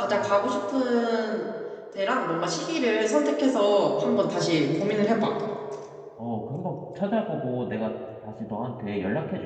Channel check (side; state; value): both; identical; correlation 1.00